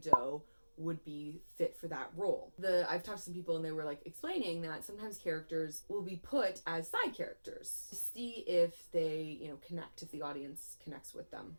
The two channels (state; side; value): inverted; both; correlation -1.00